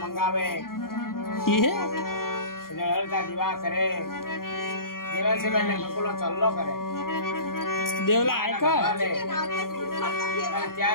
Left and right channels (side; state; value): right; late; 0.92 ms